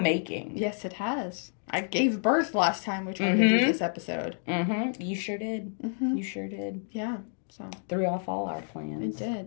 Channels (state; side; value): silent; right; 56 dB below the other